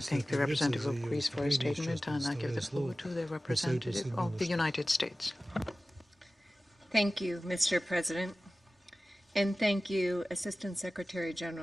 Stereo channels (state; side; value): normal; both; correlation 0.97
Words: the representative of Greece for his statement, and I give the floor to the representative of the United States. Thank you, Mr. President, and thank you, Assistant Secretary